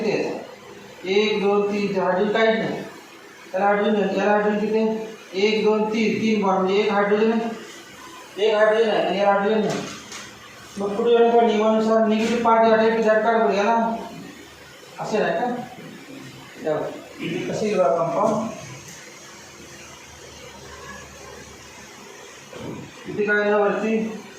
आहे? 1 2 3. हायड्रोजन काहीच नाही त्याला हायड्रोजन. याला हायड्रोजन किती आहे? 1 2 3. 3 बॉन्ड म्हणजे एक हायड्रोजन आहे, एक हायड्रोजन आहे आणि याला हायड्रोजन नाही. मग पुढे येऊन का नियमानुसार निगेटिव्ह पार्ट या टाईप झट काढ बघूया ना, असे नाही का? कसे कंपाऊंड इथे काय ना वरती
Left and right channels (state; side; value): identical; both; correlation 1.00